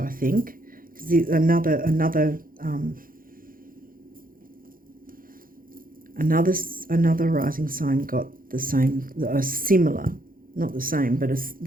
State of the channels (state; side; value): late; left; 0.41 ms